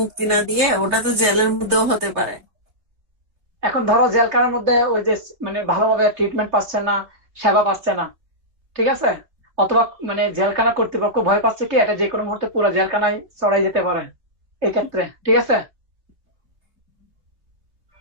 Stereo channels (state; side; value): late; left; 3.1 ms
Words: না দিয়ে ওটা তো জেলের মধ্যেও হতে পারে। এখন ধরো জেলখানার মধ্যে ওই যে মানে ভালোভাবে ট্রিটমেন্ট পাচ্ছে না, সেবা পাচ্ছে না, ঠিক আছে, অথবা মানে জেলখানা কর্তৃপক্ষ ভয় পাচ্ছে কি এটা যে কোনো মুহূর্তে পুরো জেলখানায় চড়াই যেতে পারে এই ক্ষেত্রে, ঠিক আছে।